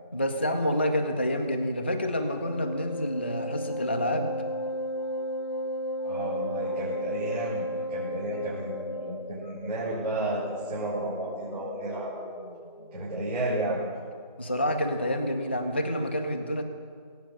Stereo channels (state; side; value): inverted; both; correlation -0.49